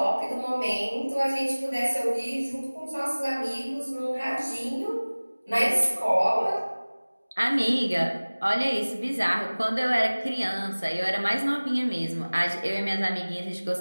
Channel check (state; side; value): inverted; both; correlation -1.00